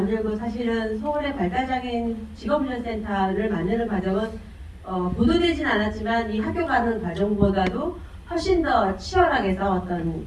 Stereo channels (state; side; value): identical; both; correlation 1.00